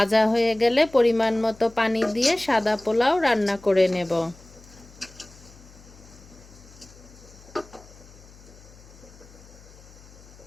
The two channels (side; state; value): left; noise; hum, 22 dB below the sound